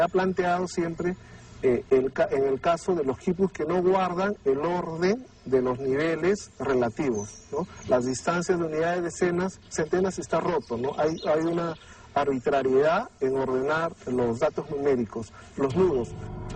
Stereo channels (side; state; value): both; identical; correlation 1.00